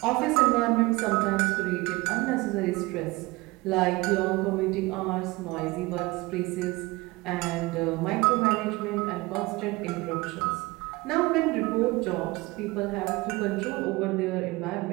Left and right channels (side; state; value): left; quieter; 22.2 dB